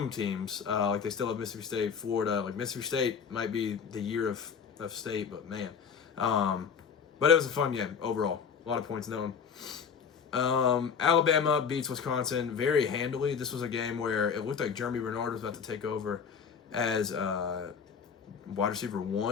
teams. Like, they still have Mississippi State, Florida. Like, Mississippi State might be the year of state, but man. But it was a fun game overall. A lot of points in that one. Alabama beats Wisconsin very handily. This was a game where it looked like Jeremy Bernard was about to take over as wide receiver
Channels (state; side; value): quieter; right; 6.5 dB